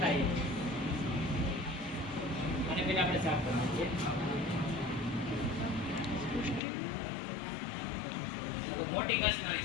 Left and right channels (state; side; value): drops out; right; at 6.6 s